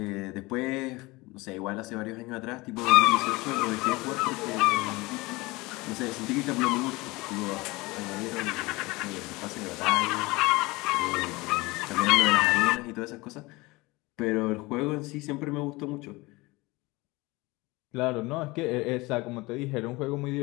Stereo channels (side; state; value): right; quieter; 22.6 dB